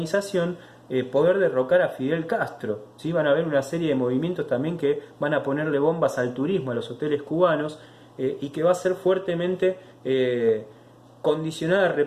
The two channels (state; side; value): identical; both; correlation 1.00